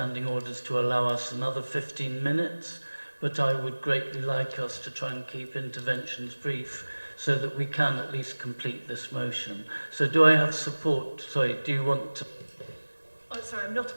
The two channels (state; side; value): inverted; both; correlation -1.00